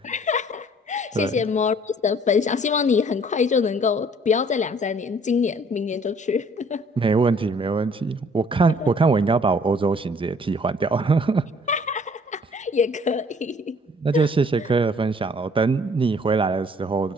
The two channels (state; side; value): normal; both; correlation 0.57